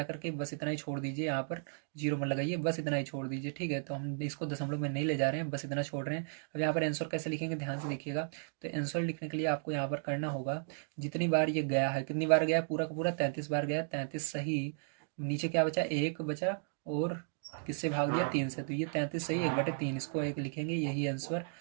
करके बस इतना ही छोड़ दीजिए, यहाँ पर 0 मत लगाइए, बस इतना ही छोड़ दीजिए। ठीक है, तो हम इसको दशमलव में नहीं ले जा रहे हैं, बस इतना छोड़ रहे हैं। अब यहाँ पर आंसर कैसे लिखेंगे, ध्यान से देखिएगा। तो आंसर लिखने के लिए आपको यहाँ पर करना होगा, जितनी बार ये गया है, कितनी बार गया है, पूरा का पूरा 33 बार गया, 33 सही। नीचे क्या बचा, 1 बचा, और किससे भाग दिया, 3 से, तो ये 33 सही 1/3, इसको 1 लिखेंगे, यही आंसर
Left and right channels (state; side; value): silent; left; digital silence